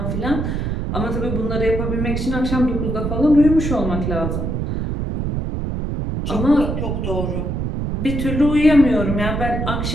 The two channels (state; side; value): noise; right; rumble, 2 dB below the sound